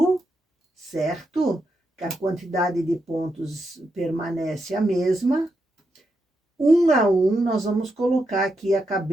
certo? Que a quantidade de pontos permanece a mesma. Um a um, nós vamos colocar aqui a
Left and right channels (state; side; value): normal; both; correlation 0.84